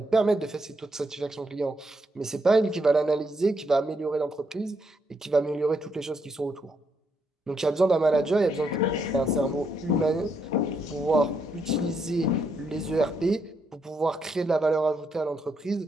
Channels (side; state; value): both; normal; correlation 0.77